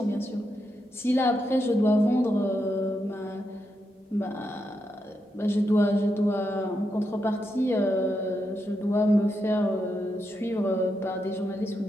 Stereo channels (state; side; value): normal; both; correlation 0.84